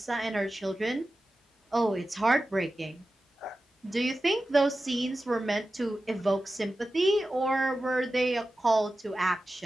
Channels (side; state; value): both; normal; correlation 0.94